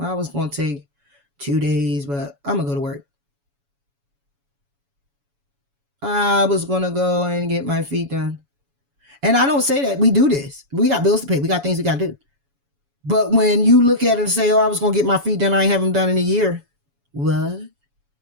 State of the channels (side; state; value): left; late; 7.1 ms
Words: was going to take 2 days, but I'm going to go to work. I was going to go and get my feet done. And I don't say that. We do this. We got bills to pay. We got things we got to do. But when you look at it and say, oh, I was going to get my feet done, I ain't have them done in a year. What?